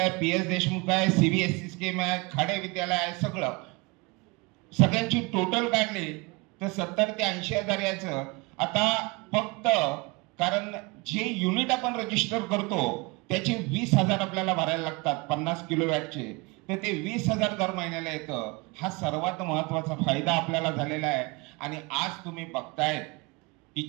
PS देशमुख आहे, CBSE स्कीम आहे, खाडे विद्यालय आहे, सगळ्यांची टोटल काढली तर 70 ते 80 हजार यायचं. आता फक्त कारण जे युनिट आपण रजिस्टर करतो त्याचे 20,000 आपल्याला भरायला लागतात 50 किलोवॅटचे, तर ते 20,000 दर महिन्याला येतं. हा सर्वात महत्वाचा फायदा आपल्याला झालेला आहे. आणि आज तुम्ही बघताय की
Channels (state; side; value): quieter; left; 26.4 dB